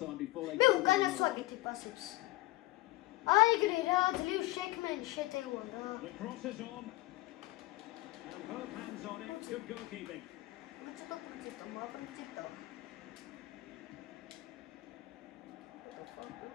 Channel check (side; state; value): right; quieter; 19.4 dB